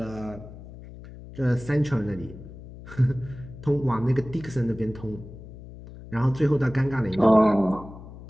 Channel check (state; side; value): noise; left; hum, 15 dB below the sound